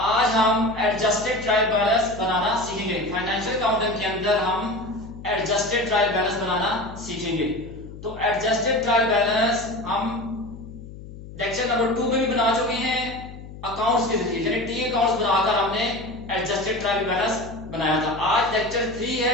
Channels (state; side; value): noise; left; hum, 14 dB below the sound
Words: हम एडजस्टेड ट्रायल बैलेंस बनाना सीखेंगे। फाइनेंशियल अकाउंटिंग के अंदर हम एडजस्टेड ट्रायल बैलेंस बनाना सीखेंगे। तो एडजस्टेड ट्रायल बैलेंस हम लेक्चर नंबर 2 में भी बना चुके हैं अकाउंट्स के जरिए, यानी टी अकाउंट्स बनाकर हमने एडजस्टेड ट्रायल बैलेंस बनाया था। आज लेक्चर 3